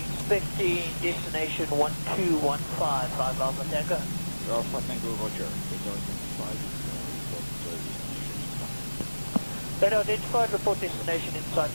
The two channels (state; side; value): inverted; both; correlation -1.00